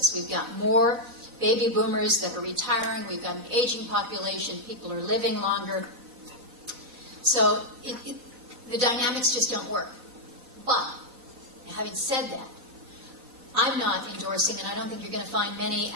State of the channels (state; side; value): late; left; 3.9 ms